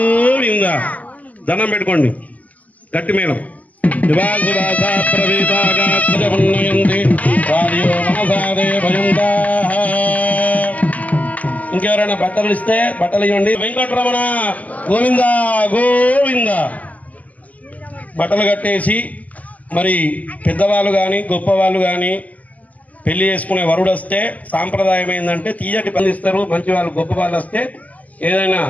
దండం పెట్టుకోండి. గట్టి మేళం. ఇంకెవరైనా బట్టలు ఇస్తే బట్టలు ఇవ్వండి. వెంకటరమణ గోవింద గోవింద. బట్టలు కట్టేసి మరి పెద్దవాళ్ళు కానీ గొప్పవాళ్ళు కానీ పెళ్లి చేసుకునే వరుడు వస్తే సాంప్రదాయం ఏంటంటే తీయటి పందిస్తారు. మంచి వాళ్ళు గొప్ప వాళ్ళు వస్తే ఏదైనా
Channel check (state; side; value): late; right; 0.075 ms